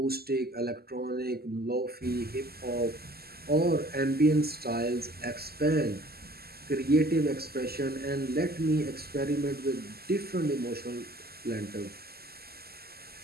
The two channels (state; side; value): late; left; 0.46 ms